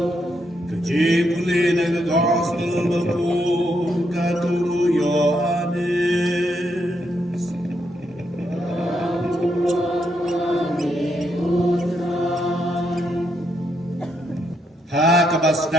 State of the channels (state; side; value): normal; both; correlation 0.78